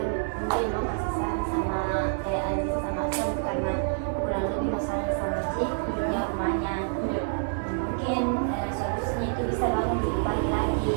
mungkin mau kasih saran sama kayak Aziz sama Asam karena kurang lebih masalahnya sama sih punya rumahnya. Iya. Mungkin solusinya itu bisa bangun lebih pagi lagi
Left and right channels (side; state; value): left; silent; 56 dB below the other